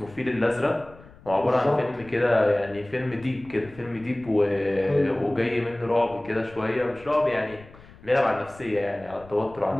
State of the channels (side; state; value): left; noise; rumble, 22 dB below the sound